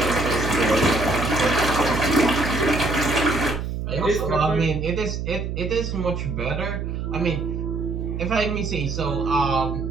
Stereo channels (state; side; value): noise; right; hum, 4 dB below the sound